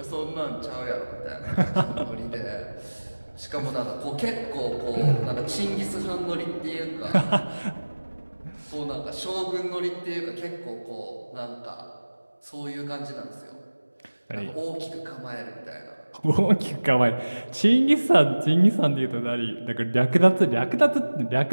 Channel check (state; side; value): inverted; both; correlation -1.00